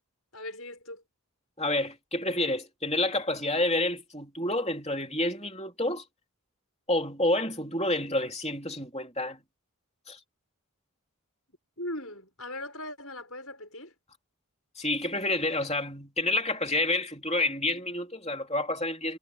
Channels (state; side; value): normal; both; correlation 0.32